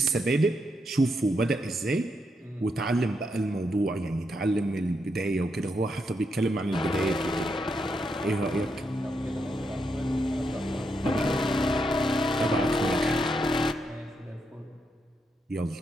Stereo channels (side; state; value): both; normal; correlation 0.81